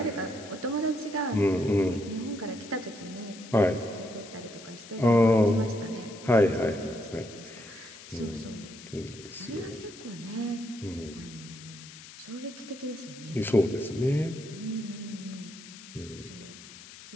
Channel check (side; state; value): left; noise; hiss, 16 dB below the sound